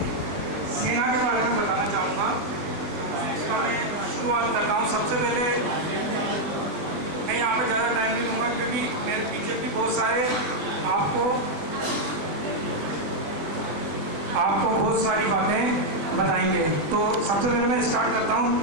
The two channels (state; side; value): late; left; 20 ms